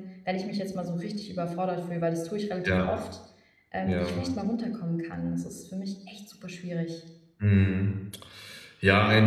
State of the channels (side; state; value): both; identical; correlation 1.00